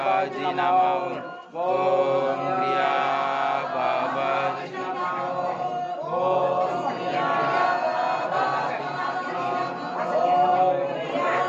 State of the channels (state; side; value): identical; both; correlation 1.00